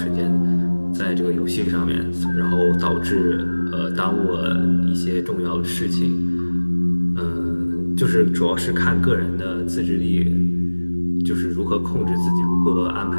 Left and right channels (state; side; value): inverted; both; correlation -1.00